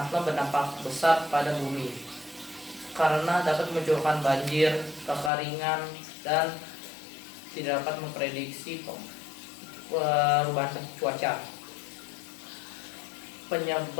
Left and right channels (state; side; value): drops out; right; at 5.3 s